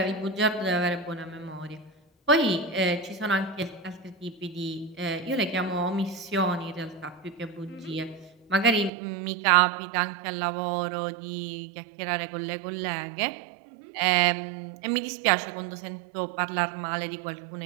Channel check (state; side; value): drops out; left; at 8.9 s